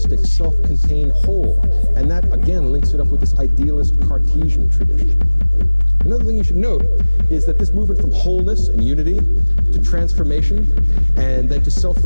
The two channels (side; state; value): both; inverted; correlation -1.00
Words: self-contained whole. And that, again, links it up with this idealist Cartesian tradition. Another thing you should note is that this movement from wholeness and unity to transformation and then to